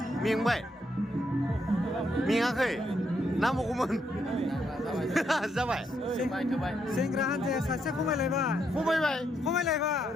नांगौमोन जाबाय सेंग्रा हान्जाया सासे खमायलायबाय खमायबाय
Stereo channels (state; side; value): normal; both; correlation 0.77